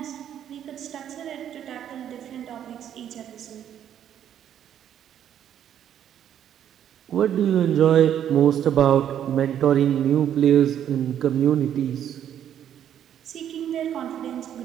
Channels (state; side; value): quieter; left; 10.0 dB